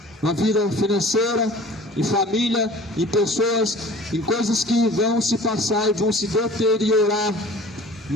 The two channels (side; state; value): both; normal; correlation 0.45